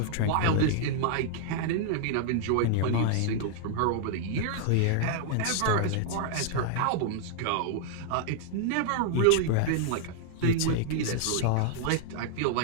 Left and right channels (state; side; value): different; both; correlation -0.01